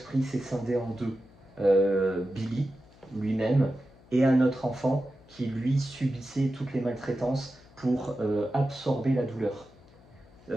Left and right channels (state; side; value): noise; left; hum, 26 dB below the sound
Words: s'est scindé en deux. Billy, lui-même, et un autre enfant qui, lui, subissait toutes les maltraitances pour absorber la douleur.